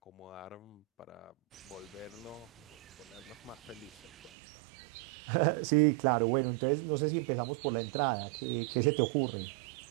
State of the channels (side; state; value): left; drops out; at 4.3 s